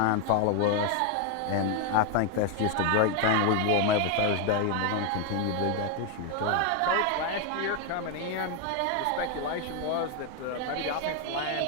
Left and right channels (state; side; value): different; both; correlation 0.01